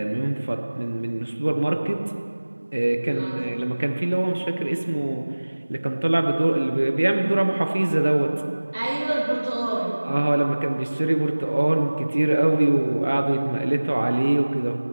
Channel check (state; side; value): inverted; both; correlation -1.00